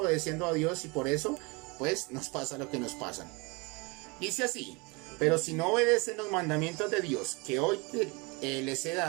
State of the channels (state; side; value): quieter; left; 27.9 dB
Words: a Dios y por eso, pues, nos pasa lo que nos pasa. Dice así: pero si no obedecen los mandamientos de Dios que hoy les he